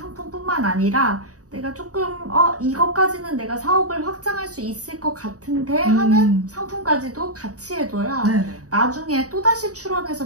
아니라 내가 조금 이것까지는 내가 사업을 확장할 수 있을 것 같은데 하는 상품까지도 같이 해둬야 네네. 나중에 또다시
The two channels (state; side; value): late; left; 0.66 ms